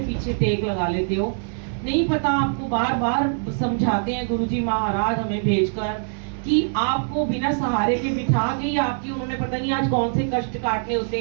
पीछे टेक लगा लेते हो। नहीं पता आपको बार बार समझाते हैं गुरुजी महाराज हमें भेजकर कि आपको बिना सहारे के बिठा के ही आपकी उन्होंने पता नहीं आज कौन से कष्ट काटने होते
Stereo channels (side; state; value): left; silent; digital silence